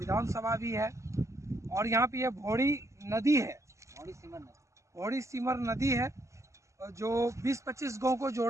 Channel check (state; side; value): late; left; 0.14 ms